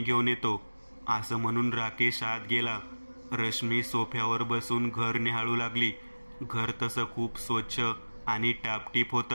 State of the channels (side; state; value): both; inverted; correlation -1.00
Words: घेऊन येतो. असं म्हणून राकेश आत गेला. रश्मी सोफ्यावर बसून घर निहाळू लागली. घर तसं खूप स्वच्छ आणि टापटीप